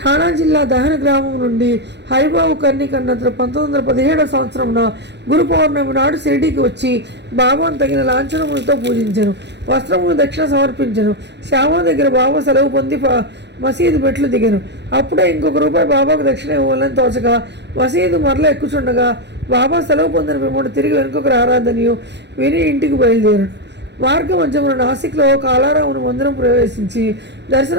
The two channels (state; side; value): late; left; 0.50 ms